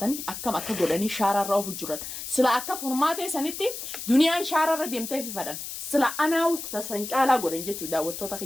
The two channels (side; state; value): left; noise; hiss, 8 dB below the sound